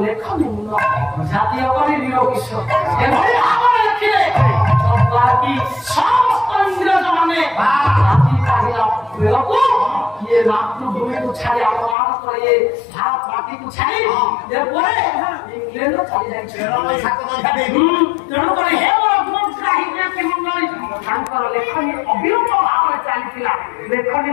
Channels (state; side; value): drops out; right; at 12.0 s